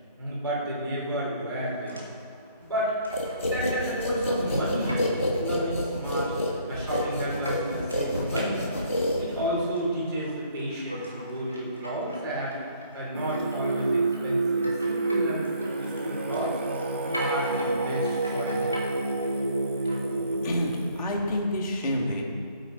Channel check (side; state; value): both; inverted; correlation -0.61